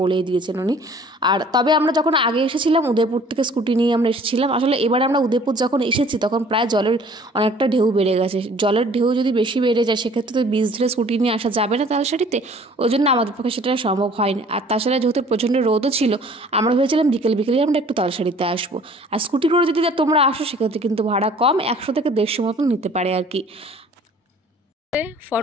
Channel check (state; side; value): normal; both; correlation 0.52